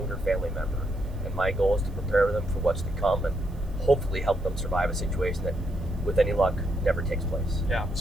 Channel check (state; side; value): noise; right; hiss, 29 dB below the sound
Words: family member. And my goal is to prepare them for what's to come and hopefully help them survive a situation that, with any luck, never takes place. Yeah.